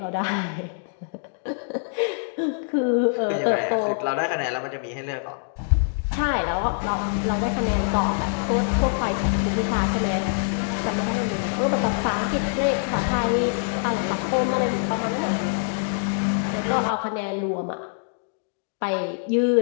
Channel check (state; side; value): silent; right; digital silence